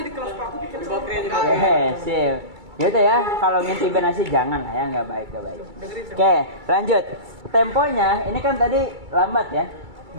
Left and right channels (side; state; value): left; late; 2.3 ms